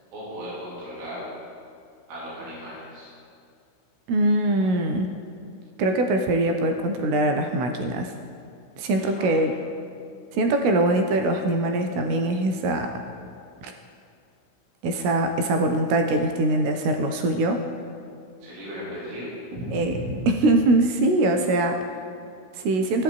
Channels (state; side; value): late; left; 16 ms